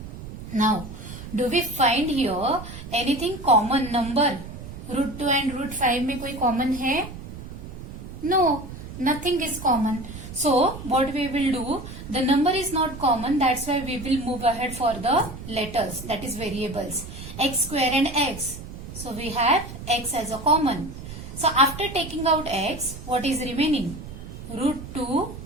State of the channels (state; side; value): noise; right; rumble, 11 dB below the sound